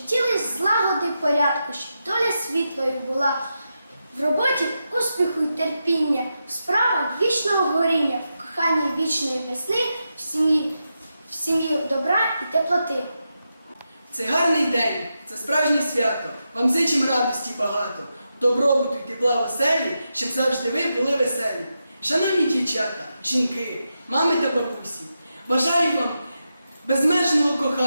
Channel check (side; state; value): both; inverted; correlation -0.87